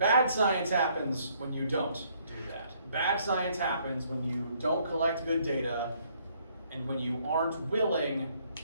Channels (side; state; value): both; inverted; correlation -0.66